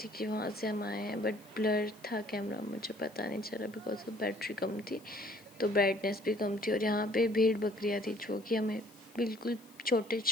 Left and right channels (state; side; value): noise; left; hiss, 25 dB below the sound